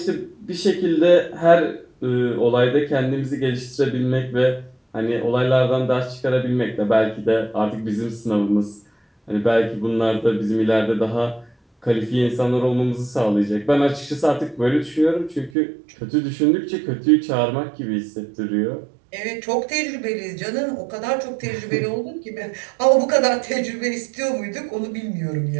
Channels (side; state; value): left; drops out; at 15.5 s